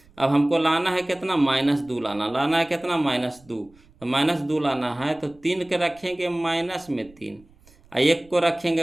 अब हमको लाना है कितना -2 लाना है कितना -2, तो -2 लाना है, तो 3 के रखेंगे माइनस में 3, और 1 को रखेंगे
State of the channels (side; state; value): right; noise; rumble, 28 dB below the sound